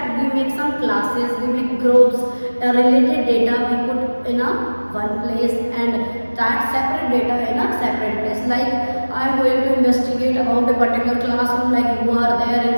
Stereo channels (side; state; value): both; inverted; correlation -1.00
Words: We make some classes, we make groups. Related data we put in a one place and that separate data in a separate place. Like I am going to investigate about a particular classroom, like you are there